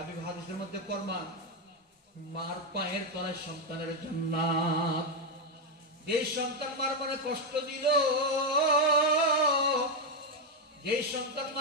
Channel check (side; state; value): both; normal; correlation 0.04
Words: হাদিসের মধ্যে ফরমান, মার পায়ের তলায় সন্তানের জান্নাত। যে সন্তান মার মনে কষ্ট দিল, যে সন্তান